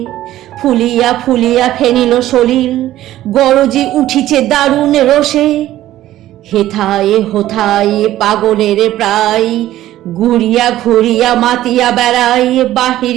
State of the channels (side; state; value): left; quieter; 14.0 dB